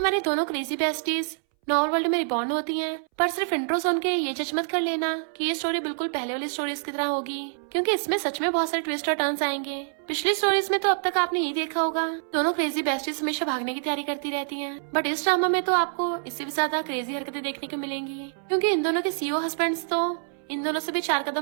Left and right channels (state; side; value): silent; left; 61 dB below the other